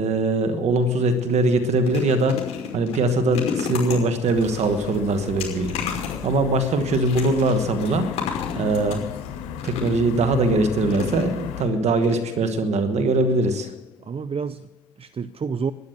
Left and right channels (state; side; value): normal; both; correlation 0.47